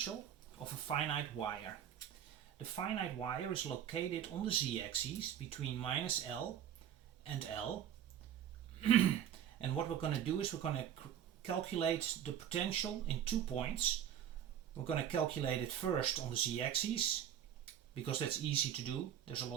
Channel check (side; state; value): left; quieter; 9.8 dB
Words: of a finite wire. The finite wire is located on the z-axis between minus L and L. And what we're going to do is we're going to calculate the potential in 2 points. We're going to calculate it first on the z-axis because that's easy to do. There's a